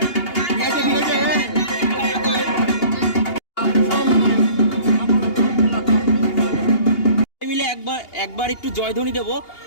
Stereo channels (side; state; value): right; late; 2.8 ms